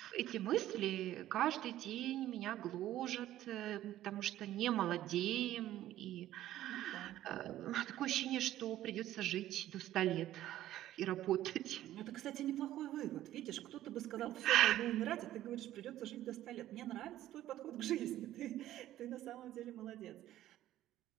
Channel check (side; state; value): left; quieter; 13.5 dB